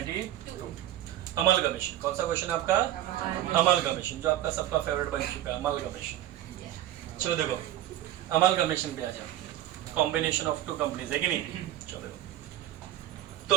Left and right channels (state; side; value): quieter; left; 13.2 dB